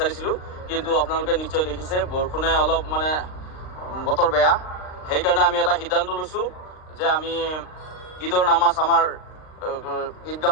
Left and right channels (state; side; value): late; right; 39 ms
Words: কিন্তু আপোনালোকে নিশ্চয় দেখিছে বৰষুণে অলপ বতৰ বেয়া, সেইকাৰণে আমি এটা সিদ্ধান্ত লৈছোঁ যে আমি ঈদৰ নামাজ আমাৰ